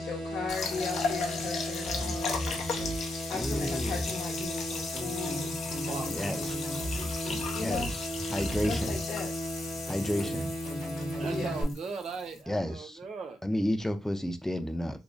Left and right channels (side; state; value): both; normal; correlation 0.83